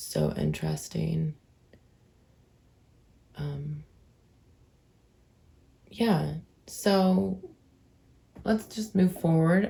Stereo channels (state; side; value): identical; both; correlation 1.00